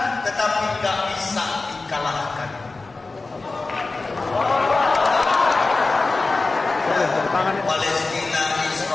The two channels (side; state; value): right; quieter; 3.6 dB